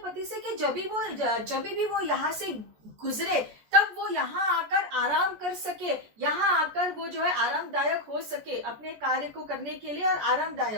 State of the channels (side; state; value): left; late; 14 ms